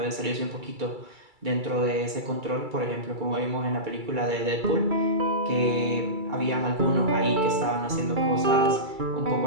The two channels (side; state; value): left; late; 2.3 ms